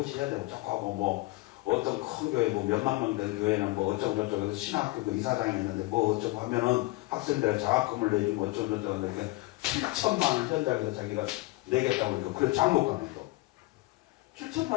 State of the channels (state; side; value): quieter; right; 21.5 dB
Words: 해야 되고 자꾸 하고 뭐 어떤 큰 교회 뭐 몇만 명 된 교회는 뭐 어쩌고 저쩌고 해서 신학교 그 이사장이 있는데 뭐 어쩌고 하면은 학생들 자학금을 내주고 어쩌고 저쩌고 하는데 7천만 원 현장에서 자기가 내겠다고 그러니까 그래 장목가면서 7천만